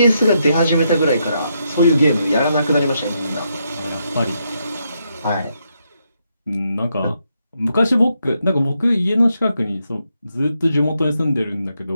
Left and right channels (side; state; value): both; inverted; correlation -0.80